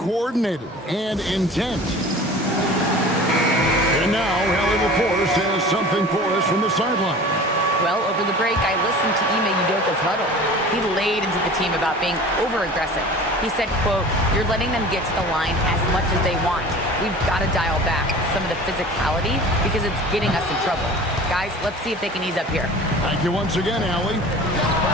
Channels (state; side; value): normal; both; correlation 0.40